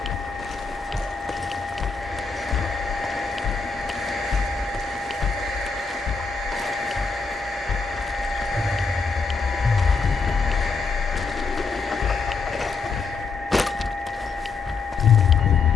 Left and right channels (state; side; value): quieter; right; 4.7 dB